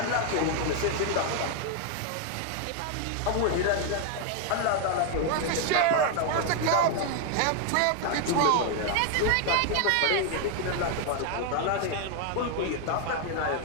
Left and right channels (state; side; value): different; both; correlation 0.01